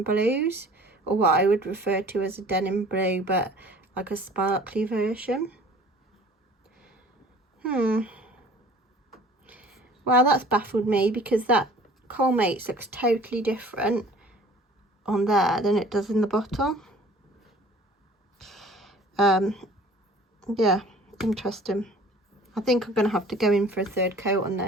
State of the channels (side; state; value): both; normal; correlation 0.49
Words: blues, or what I would refer to as a denim blue, but like a sparkly version. Well, that's baffled me, because that Colmates looks totally different on there than it does in the bottle. Yeah, interesting. I think I'm going to have to go in for a third coat on